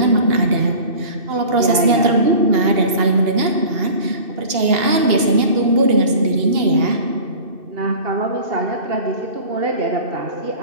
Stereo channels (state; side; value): late; left; 2.8 ms